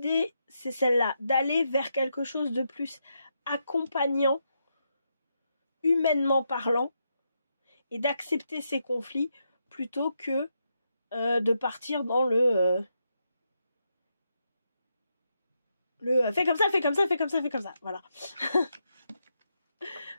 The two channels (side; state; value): both; inverted; correlation -0.82